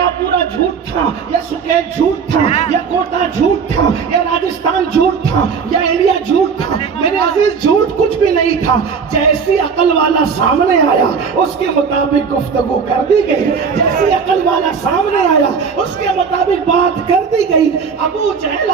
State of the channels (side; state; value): left; quieter; 5.9 dB